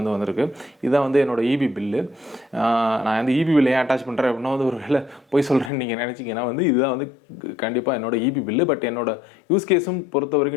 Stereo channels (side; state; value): right; drops out; at 5.7 s